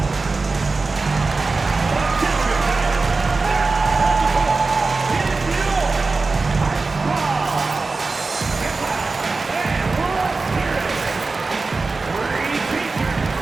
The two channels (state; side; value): quieter; left; 3.9 dB